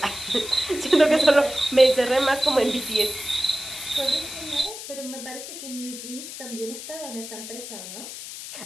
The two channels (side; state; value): left; noise; hiss, 10 dB below the sound